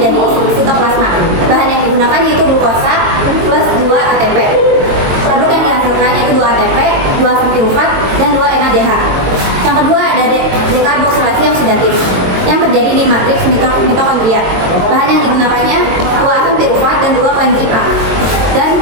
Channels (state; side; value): late; left; 22 ms